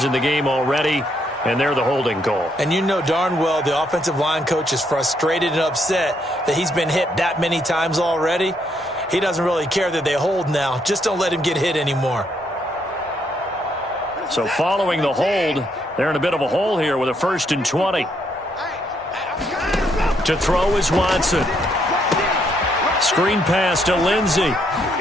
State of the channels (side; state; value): both; normal; correlation 0.74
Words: in the game already, and they're the holding call. And you know darn well the offensive line coach is frustrated and upset that he's been hit that many times already. He doesn't really care that they hold now. Just don't let him get hit anymore. So following the hold, they're in a bit of a hole here with a 1st and 20. To throw is Watson. Screen pass to Lindsey.